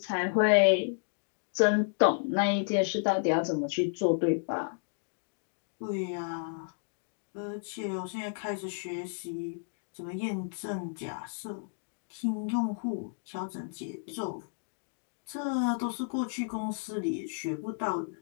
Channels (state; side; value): silent; right; digital silence